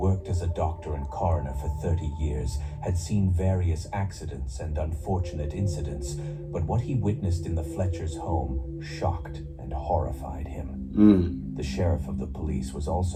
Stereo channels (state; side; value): identical; both; correlation 1.00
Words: as a doctor and coroner for 30 years, had seen various accidents and unfortunate incidents, but what he witnessed in the Fletcher's home shocked and horrified him. The sheriff of the police was